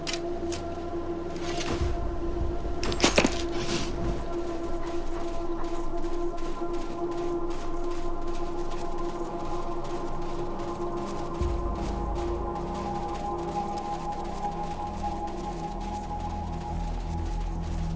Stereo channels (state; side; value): identical; both; correlation 1.00